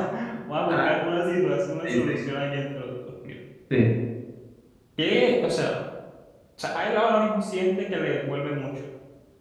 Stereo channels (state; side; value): identical; both; correlation 1.00